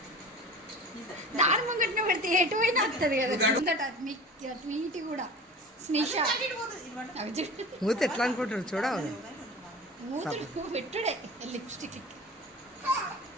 దాని ముంగట్నే పెడితే ఎటు పోయినా వస్తుంది కదా ట్వీట్ కూడా స్నిష మూత ఎట్లా అనుకుంటారు చూడవు మూతుడు పెట్టుడే లిప్స్టిక్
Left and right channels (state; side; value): normal; both; correlation 0.37